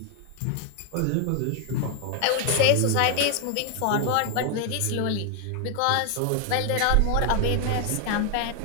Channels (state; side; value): different; both; correlation 0.01